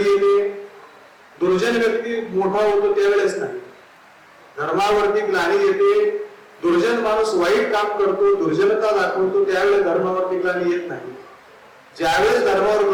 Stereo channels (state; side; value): identical; both; correlation 1.00